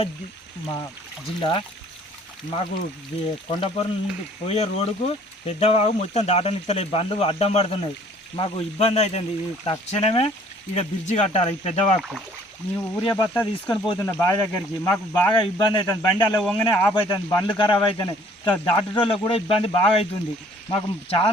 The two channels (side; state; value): both; normal; correlation 0.57